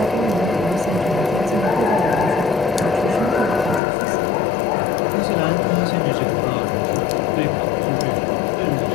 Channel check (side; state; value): right; drops out; at 3.8 s